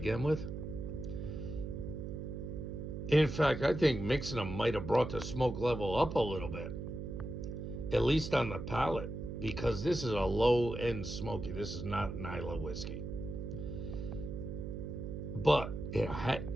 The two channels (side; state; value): right; noise; hum, 6 dB below the sound